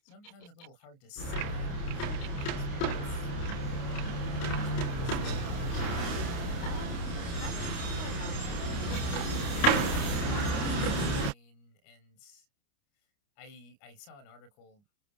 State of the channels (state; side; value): late; right; 29 ms